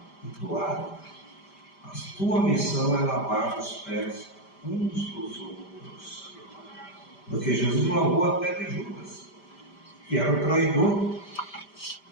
e toalha. A tua missão é lavar os pés uns dos outros. Porque Jesus lavou até de Judas, que era o traidor.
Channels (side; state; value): right; late; 5.0 ms